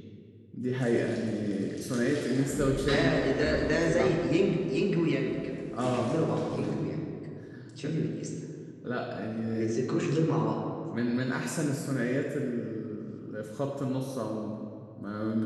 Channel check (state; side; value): identical; both; correlation 1.00